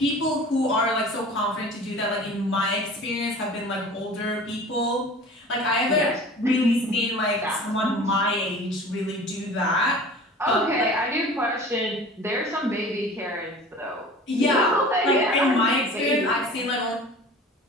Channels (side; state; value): both; normal; correlation 0.41